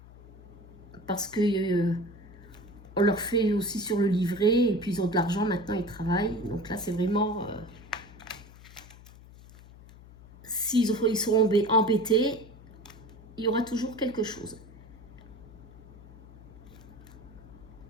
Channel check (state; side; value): noise; left; hum, 20 dB below the sound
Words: Parce que on leur fait aussi sur le livret. Et puis, ils ont de l'argent. Maintenant, ils travaillent. Donc là, c'est vraiment... s'ils sont embêtés, il y aura toujours quelque chose.